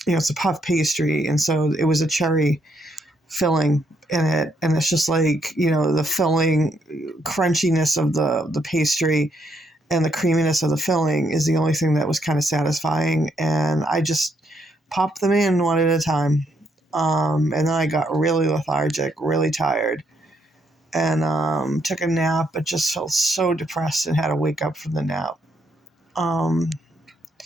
it's a puff pastry, and so it was a cherry filling in it, and it's just like, the filling crunchiness of the pastry and the creaminess of the filling is the only thing that was kind of satisfying, and I just popped them in one at a time, and then I got really lethargic, really tired, and took a nap, but just felt so depressed and had to wake up from the nap.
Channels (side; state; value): both; normal; correlation 0.74